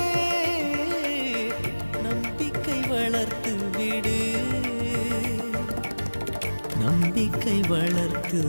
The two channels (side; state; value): both; inverted; correlation -1.00